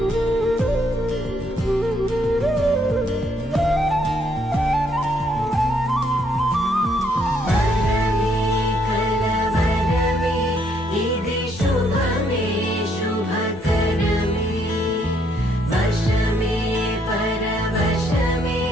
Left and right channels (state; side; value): normal; both; correlation 0.70